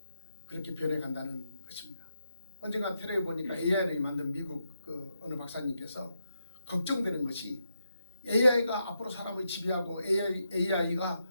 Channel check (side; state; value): both; inverted; correlation -0.84